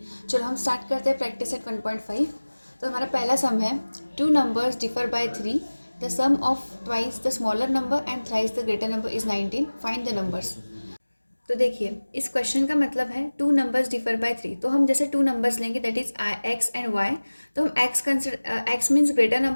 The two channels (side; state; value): both; inverted; correlation -1.00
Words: चलो हम स्टार्ट करते हैं प्रैक्टिस सेट 1.5। तो हमारा पहला सम है, two numbers differ by 3, the sum of twice the smaller number and thrice the greater number is 19, find the numbers. तो देखिए, इस क्वेश्चन का मतलब है टू नंबर्स डिफर बाय 3। तो हम जैसे टू नंबर्स लेंगे, that is X and Y. तो हम X means greater